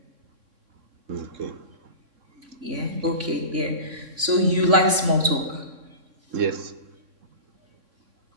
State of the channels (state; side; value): late; left; 3.5 ms